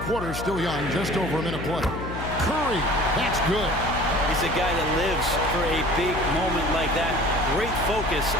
quarter still young, just over a minute play. Curry, that's good. He's a guy that lives for a big moment like that. Great focus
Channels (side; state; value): left; noise; hum, 7 dB below the sound